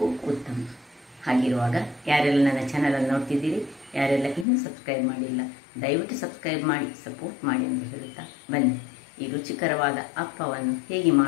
ಉತ್ತಮ. ಹಾಗಿರುವಾಗ ಯಾರೆಲ್ಲ ನನ್ನ ಚಾನಲನ್ನು ನೋಡ್ತಿದ್ದೀರಿ, ಯಾರೆಲ್ಲ ಇನ್ನೂ ಸಬ್ಸ್ಕ್ರೈಬ್ ಮಾಡಿಲ್ಲ, ದಯವಿಟ್ಟು ಸಬ್ಸ್ಕ್ರೈಬ್ ಮಾಡಿ ಸಪೋರ್ಟ್ ಮಾಡಿ ಅಂತ ಹೇಳುತ್ತಾ ಬನ್ನಿ ಈ ರುಚಿಕರವಾದ ಅಪ್ಪವನ್ನು ಹೇಗೆ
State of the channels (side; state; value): right; drops out; at 4.5 s